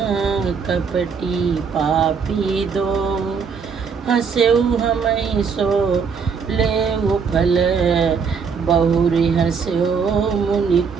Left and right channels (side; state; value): left; quieter; 5.9 dB